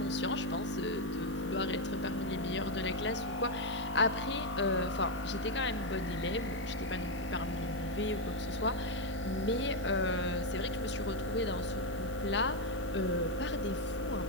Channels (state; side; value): noise; right; hiss, 20 dB below the sound